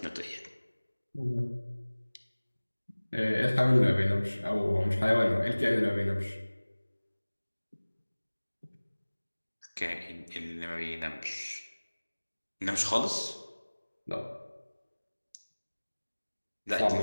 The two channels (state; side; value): inverted; both; correlation -1.00